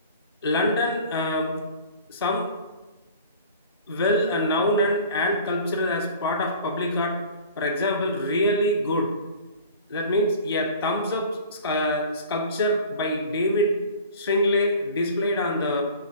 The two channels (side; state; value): both; inverted; correlation -0.42